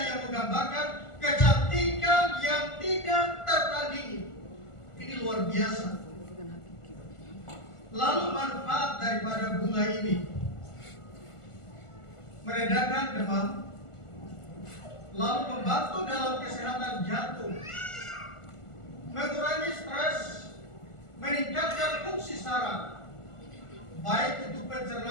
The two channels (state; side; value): late; right; 1.4 ms